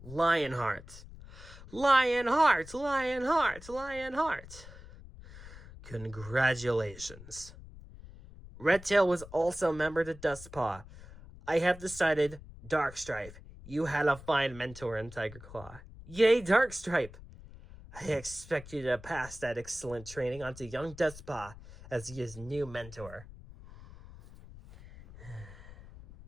Lionheart, Lionheart, Lionheart. Congratulations. Redtail was also a member to Dustpaw. I have decided, Darkstripe, you had a fine mentor in Tiger Claw. Yay, Darkstripe! I expect you to pass that excellent training onto young Dustpaw as his new mentor.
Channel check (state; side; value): noise; left; rumble, 17 dB below the sound